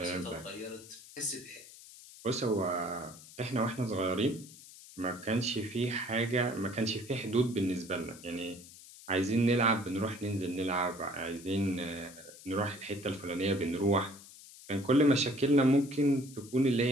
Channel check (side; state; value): left; noise; hiss, 18 dB below the sound